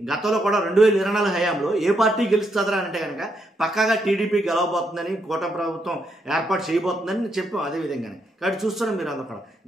గతంలో కూడా 2024 హయాంలో ఏ పార్టీ గెలుస్తుందా అంటే కనుక పక్కాగా టీడీపీ గెలవబోతుందని, కూటమి ప్రభుత్వం ఏర్పాటు చేయబోతుందని చెప్పాం అదే విధంగానే. కాబట్టి చూస్తున్నాం మీరు అందరూ కూడా.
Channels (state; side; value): normal; both; correlation 0.78